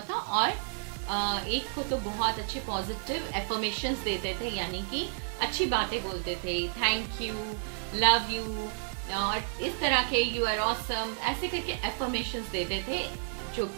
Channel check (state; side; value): silent; left; 57 dB below the other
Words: और एक को तो बहुत अच्छे पॉजिटिव एफर्मेशंस देते थे, यानी कि अच्छी बातें बोलते थे, थैंक यू, लव यू, और इस तरह के यू आर ऑसम, ऐसे करके एफर्मेशंस देते थे, जो